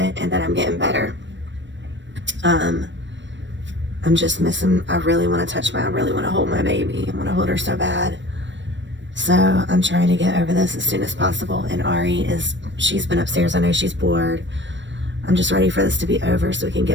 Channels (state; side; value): late; left; 0.53 ms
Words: and that I'm getting better. I'm just missing, I really want to I really want to hold my baby. I want to hold her so bad. So I'm trying to get over this as soon as possible. And Ari she's been upstairs. I know she's bored. I'm just ready for this to be over so we can